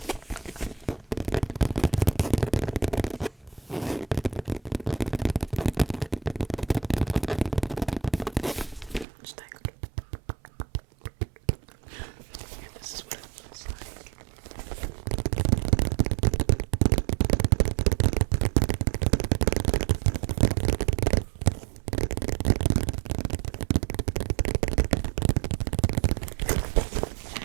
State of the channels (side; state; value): left; drops out; at 9.1 s